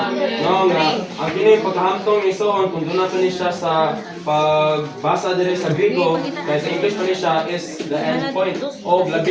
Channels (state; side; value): identical; both; correlation 1.00